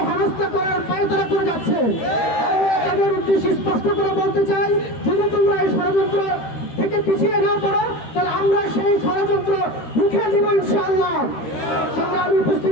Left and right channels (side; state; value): right; late; 13 ms